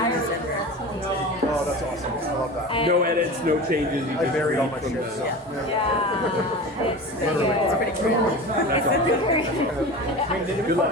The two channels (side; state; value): both; normal; correlation 0.32